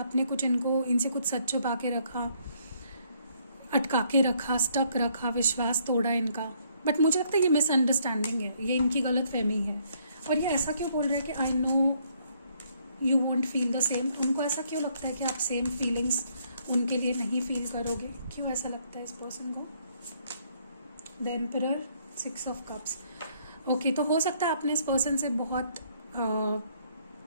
कुछ इनसे कुछ सच छुपा के रखा, अटका के रखा, स्टक रखा, विश्वास तोड़ा इनका। बट मुझे लगता है ये मिसअंडरस्टैंडिंग है, ये इनकी गलत फहमी है। और ये ऐसा क्यों बोल रहा है कि आई know you want feel the same, उनको ऐसा क्यों लगता है कि आप सेम फीलिंग्स उनके लिए नहीं फील करोगे, क्यों ऐसा लगता है इस पर्सन को। The emperor, 6 of cups, okay. तो हो सकता है आपने इस पर्सन से बहुत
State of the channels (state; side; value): inverted; both; correlation -0.68